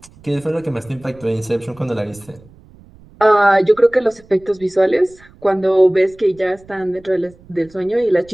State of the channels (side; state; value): right; noise; rumble, 25 dB below the sound